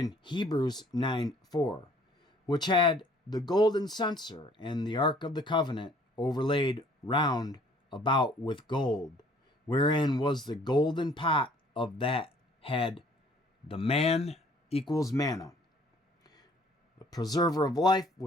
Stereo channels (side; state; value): both; normal; correlation 0.57